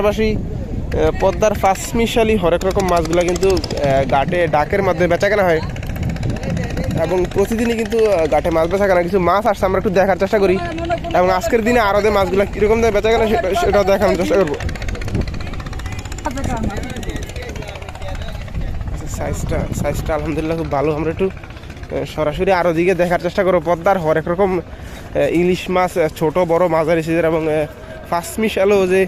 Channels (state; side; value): identical; both; correlation 1.00